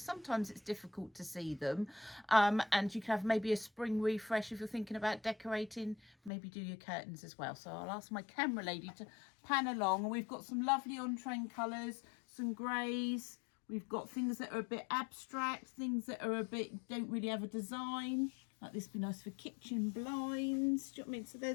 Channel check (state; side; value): drops out; right; at 6.3 s